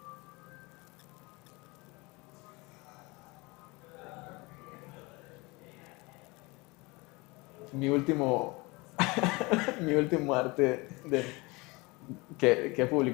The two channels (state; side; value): quieter; right; 25.2 dB